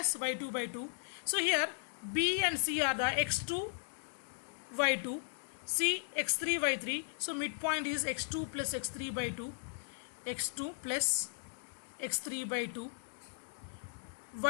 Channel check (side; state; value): right; silent; digital silence